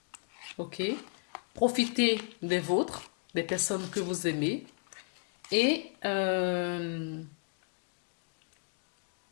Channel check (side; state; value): right; quieter; 39.7 dB